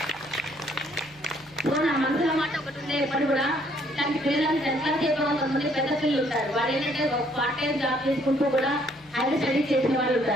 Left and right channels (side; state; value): left; noise; hum, 28 dB below the sound